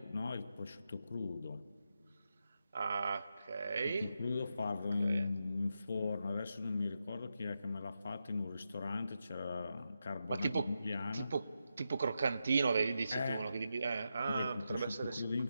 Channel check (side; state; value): both; inverted; correlation -0.86